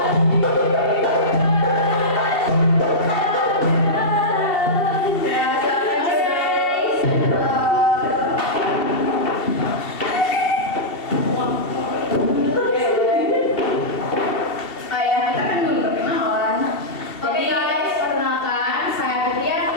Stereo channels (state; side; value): late; right; 2.7 ms